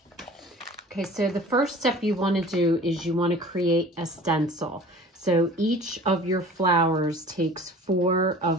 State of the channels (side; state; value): both; normal; correlation 0.44